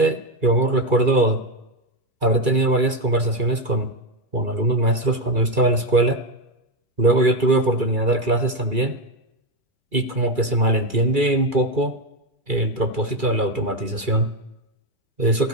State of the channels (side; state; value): left; late; 2.3 ms